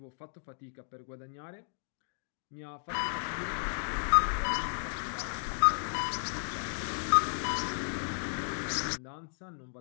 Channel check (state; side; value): silent; right; digital silence